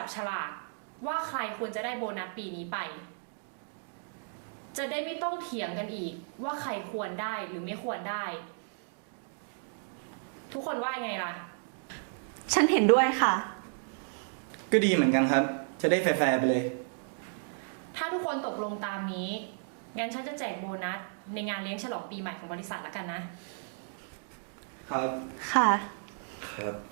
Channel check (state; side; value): silent; left; digital silence